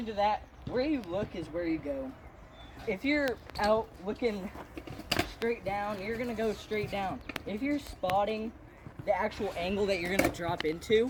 to that, where you look is where you go. If you're out looking straight down, you're gonna go straight down. If you're spotting the actual angle that you're gonna drop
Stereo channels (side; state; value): both; identical; correlation 1.00